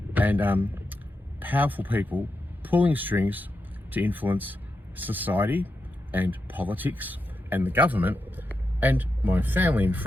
and powerful people pulling strings to influence society and politics and the government and my family and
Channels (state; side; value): normal; both; correlation 0.87